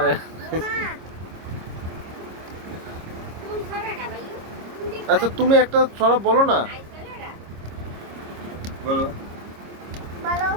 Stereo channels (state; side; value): late; left; 26 ms